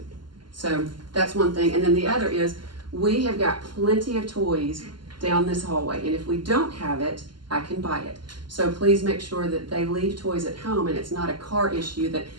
So that's one thing. And then the other is we have got plenty of toys down this hallway. And if we don't have it, I can buy it. So please make sure that they leave toys at home, and it's not a car issue that,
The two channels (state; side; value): late; left; 0.71 ms